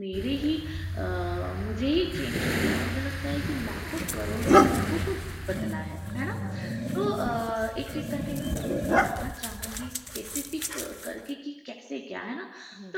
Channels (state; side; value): identical; both; correlation 1.00